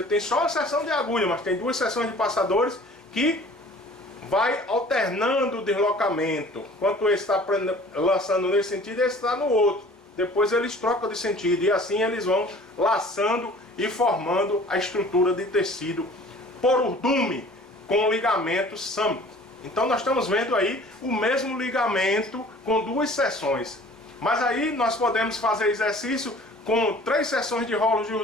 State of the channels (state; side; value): normal; both; correlation 0.48